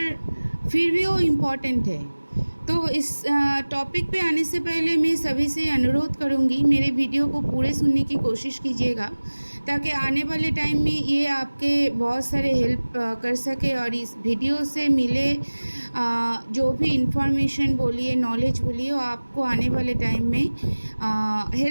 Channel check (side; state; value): both; inverted; correlation -1.00